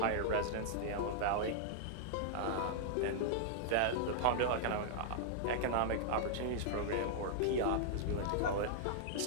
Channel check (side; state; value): both; different; correlation -0.01